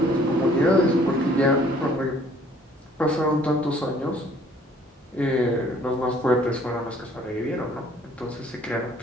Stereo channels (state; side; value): normal; both; correlation 0.58